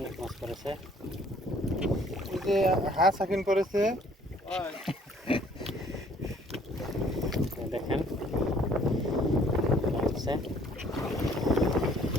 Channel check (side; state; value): both; normal; correlation 0.59